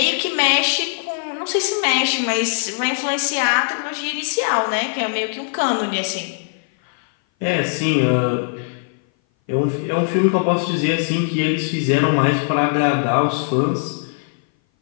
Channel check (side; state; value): right; silent; 58 dB below the other